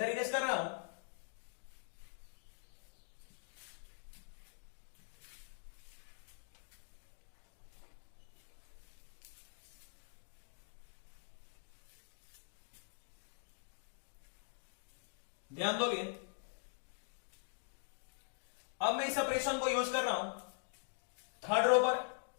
इरेज कर रहा हूं। ध्यान दोगे, अब मैं इस ऑपरेशन को यूज कर रहा हूं थर्ड रो पर।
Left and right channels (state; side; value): silent; right; digital silence